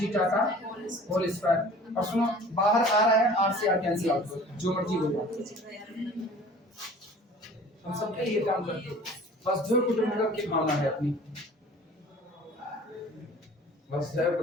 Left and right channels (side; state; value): both; normal; correlation 0.46